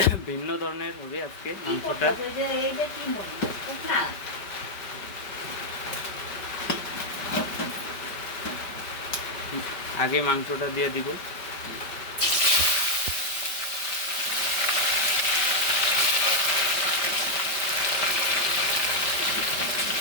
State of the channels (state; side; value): late; right; 5.2 ms